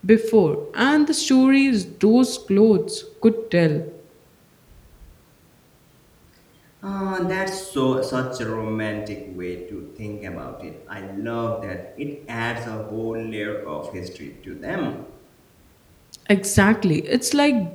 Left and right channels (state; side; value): identical; both; correlation 1.00